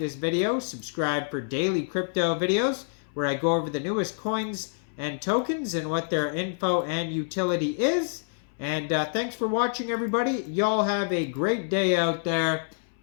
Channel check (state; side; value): silent; right; 60 dB below the other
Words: video, subscribe for daily crypto videos where I go over the newest coins and tokens and what their info and utility is. And thanks for watching, everybody. Y'all have a great day out there.